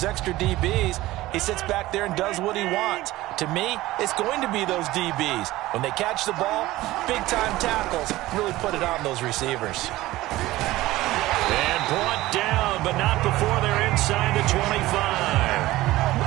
extra DBs, he sits back there and does what he wants. To me, it's going to be those DBs. When they catch the ball, big-time tackles really put it on those receivers. And brought down, but not before they're inside the 25.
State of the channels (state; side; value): quieter; left; 17.4 dB